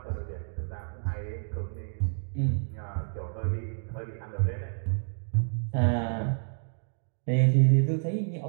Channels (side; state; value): left; silent; digital silence